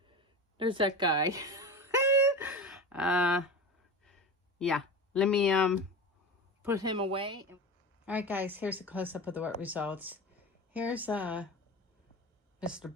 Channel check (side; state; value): both; normal; correlation 0.27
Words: There's that guy. Yeah, let me put him away. All right, guys, here's a close-up of the wet results. Here's Mr.